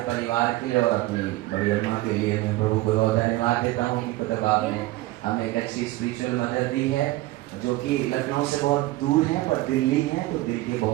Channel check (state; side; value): quieter; left; 18.0 dB